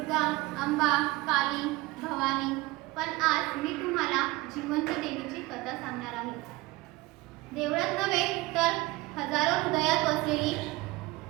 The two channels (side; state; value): left; quieter; 20.8 dB